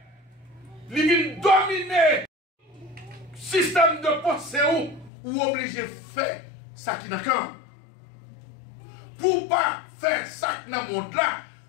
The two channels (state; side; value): drops out; right; at 5.1 s